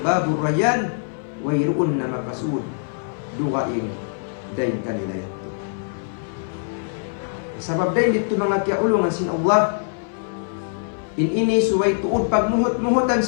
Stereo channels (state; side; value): silent; right; 58 dB below the other